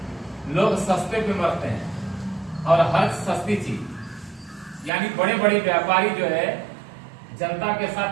लोग सस्ते पे मरते हैं, और हर सस्ती चीज, यानी बड़े बड़े व्यापारी जो है जनता के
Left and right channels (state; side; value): drops out; left; at 4.9 s